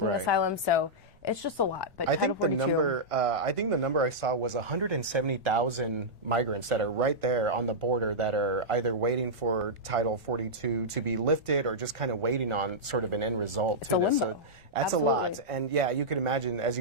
asylum. So It's just a lot. But I Title think the 42, number, I saw was 170,000 migrants that are right there on the border that are either waiting for Title 42 to be lifted or just kind of waiting on sort of an end result. It's to a this. limbo. So that's Absolutely. a lot. And yeah, you can imagine, as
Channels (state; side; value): normal; both; correlation -0.10